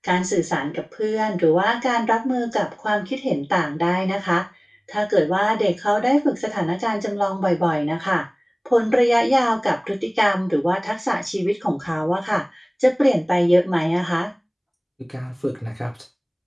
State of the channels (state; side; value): identical; both; correlation 1.00